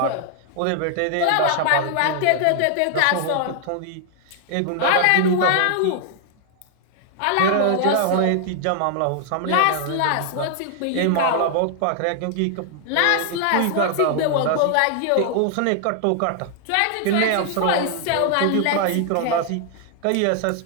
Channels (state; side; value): different; both; correlation 0.00